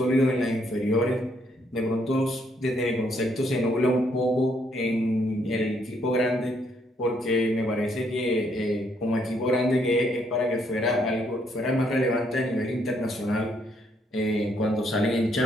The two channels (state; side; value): normal; both; correlation 0.71